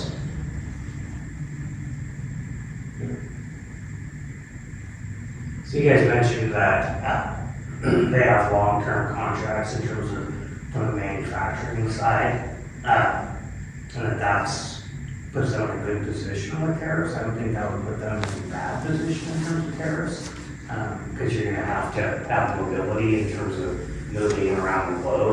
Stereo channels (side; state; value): both; identical; correlation 1.00